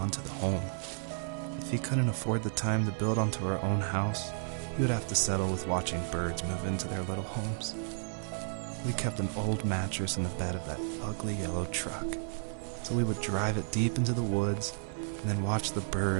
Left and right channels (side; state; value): left; silent; 56 dB below the other